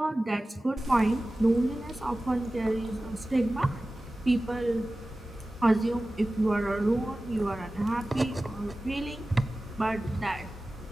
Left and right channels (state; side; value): normal; both; correlation 0.96